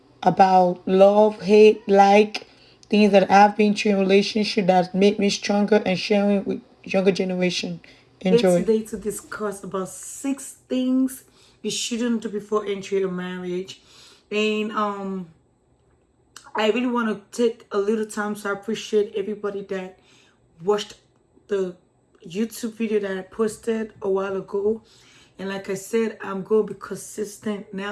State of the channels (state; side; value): identical; both; correlation 1.00